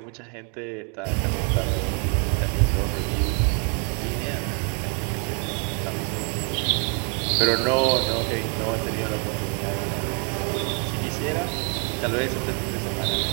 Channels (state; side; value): quieter; left; 35.8 dB